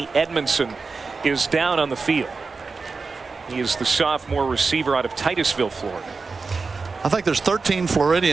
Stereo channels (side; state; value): left; quieter; 4.4 dB